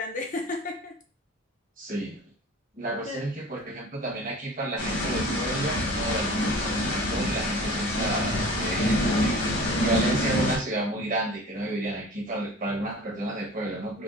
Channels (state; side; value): normal; both; correlation 0.41